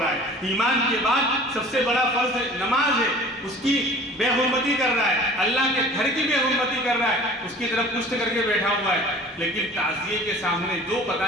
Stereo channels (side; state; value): both; normal; correlation 0.45